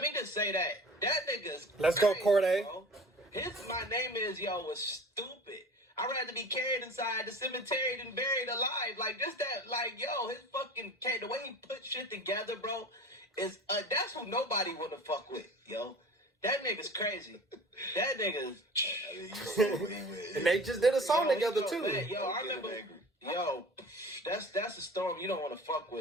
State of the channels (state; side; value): normal; both; correlation 0.39